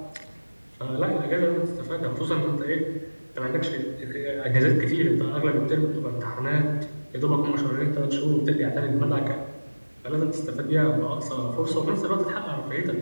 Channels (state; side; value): inverted; both; correlation -1.00